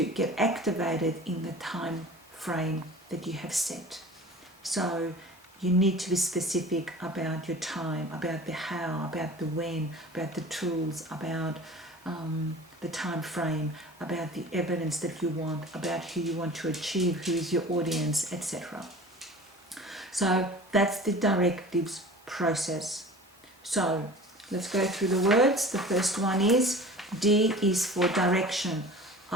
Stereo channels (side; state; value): both; normal; correlation 0.40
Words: get activated in the time frame that you have set. So you need to be specific about your time, about the how, about the when, about the tools, about the time frame, about the evidence that you want, about who you want to achieve, who is your audience, etc. So that's the directives process. So let's go through the words. The first one is D is for direction,